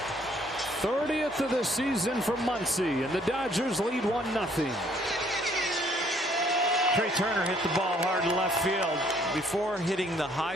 '30th of the season for Muncy, and the Dodgers lead 1-0. Trey Turner hit the ball hard to left field. Before hitting the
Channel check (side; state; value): both; normal; correlation 0.64